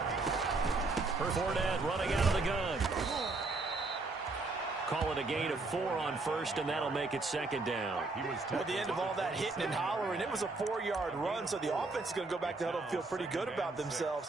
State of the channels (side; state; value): left; quieter; 3.5 dB